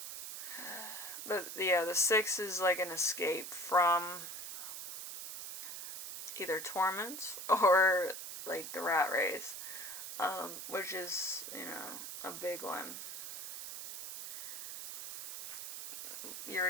know, the six is like an escape from either torments or like the rat race, which is, you know, a big one. You're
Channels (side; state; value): right; noise; hiss, 7 dB below the sound